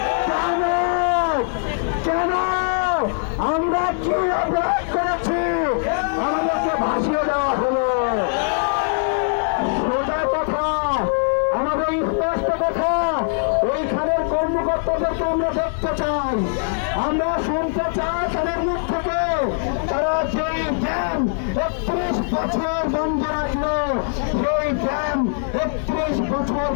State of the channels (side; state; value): right; silent; digital silence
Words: কেন কেন আমরা কি অপরাধ করেছি আমাদেরকে ভাসিয়ে দেওয়া হলো। সোজা কথা, আমাদের স্পষ্ট কথা, ওইখানের কর্মকর্তাদেরকে আমরা দেখতে চাই, আমরা শুনতে চাই তাদের মুখ থেকে তারা যেই ড্যাম 31 বছর বন্ধ রাখলো, সেই ড্যাম 31 বছর